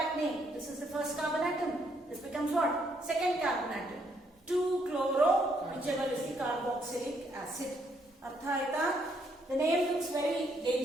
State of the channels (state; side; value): normal; both; correlation 0.72